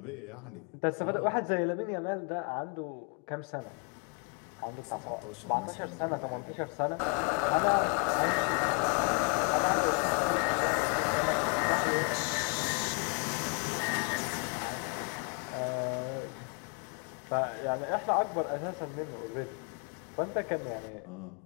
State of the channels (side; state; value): right; quieter; 37.9 dB